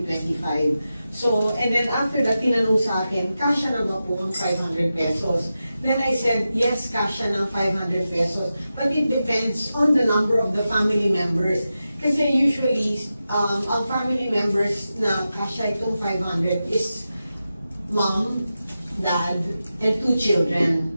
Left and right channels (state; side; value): inverted; both; correlation -0.91